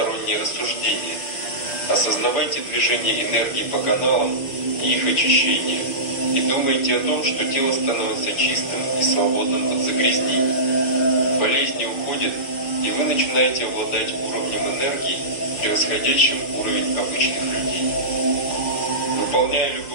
рассуждения. Осознавайте движение энергии по каналам и их очищение. И думайте о том, что тело становится чистым и свободным от загрязнений. Болезни уходят, и вы начинаете обладать уровнем энергии, превосходящим уровень обычных людей. Выполняя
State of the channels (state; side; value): late; right; 5.9 ms